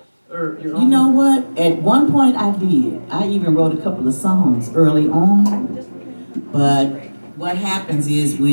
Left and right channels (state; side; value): inverted; both; correlation -1.00